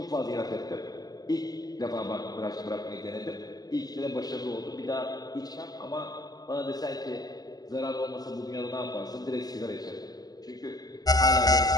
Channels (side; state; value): right; late; 0.19 ms